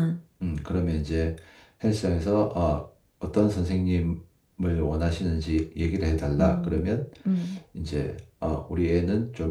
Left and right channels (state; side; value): identical; both; correlation 1.00